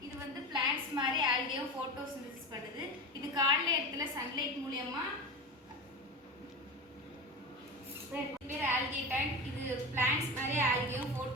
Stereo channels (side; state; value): both; normal; correlation 0.26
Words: இது வந்து பிளான்ட்ஸ் மாதிரி ஆல்கேவும் ஃபோட்டோசிந்தசிஸ் பண்ணுது. இது காலைல இடத்துல சன்லைட் மூலியமா பேர் ஆல்கே டேங்க். இது பிளான்ட்ஸ் மாதிரி ஆல்கேவும்